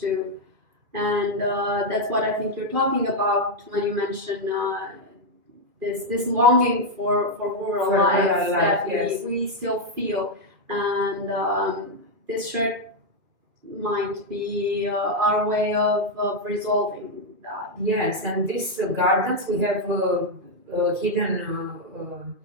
And that's what I think you're talking about when you mention this longing for rural life that we still feel. And this shirt might be our way of resolving that. Yes, and these gardens we have hidden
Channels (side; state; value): left; late; 2.7 ms